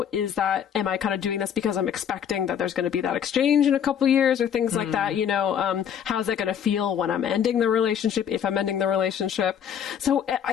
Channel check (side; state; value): right; quieter; 8.6 dB